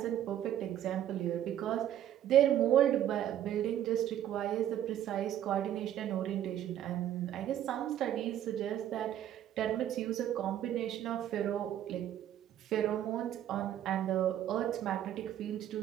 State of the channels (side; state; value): left; quieter; 11.3 dB